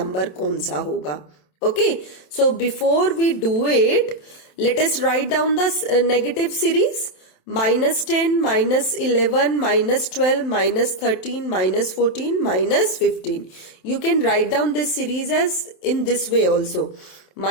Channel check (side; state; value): right; late; 27 ms